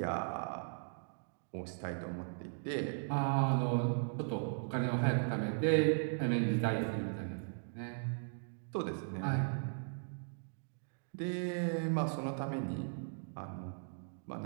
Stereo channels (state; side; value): silent; left; digital silence